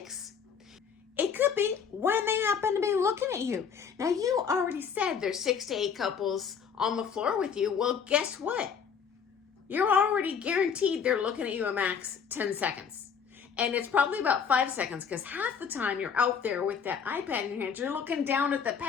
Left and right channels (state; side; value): quieter; right; 6.8 dB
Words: It could be when they happen to be looking at you. Now, you already said there's 6 to 8 couples on the floor with you. Well, guess what? You're already guaranteed they're looking at you a max 10 seconds. And it's probably about 5 seconds because half the time you're out there with that iPad in your hand, you're looking down at the